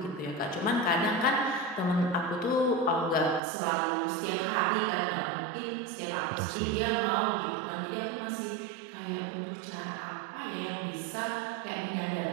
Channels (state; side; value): drops out; left; at 3.4 s